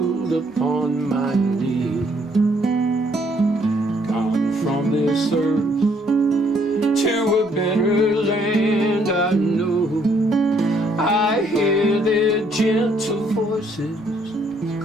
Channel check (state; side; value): normal; both; correlation 0.67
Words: upon my knee. Gone from this earth to a better land I know, I hear their gentle voices